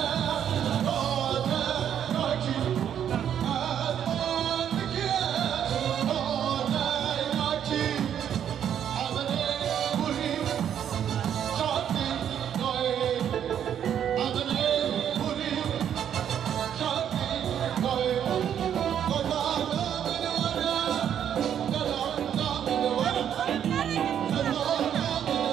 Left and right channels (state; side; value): quieter; left; 9.3 dB